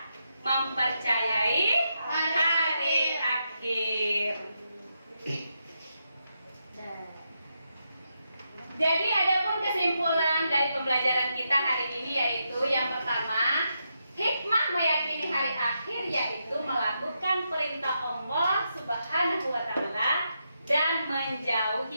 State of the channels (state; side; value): inverted; both; correlation -0.83